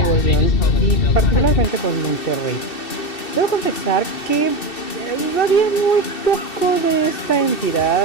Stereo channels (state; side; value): late; right; 2.7 ms